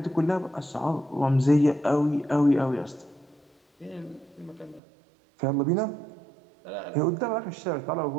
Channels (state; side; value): drops out; left; at 4.8 s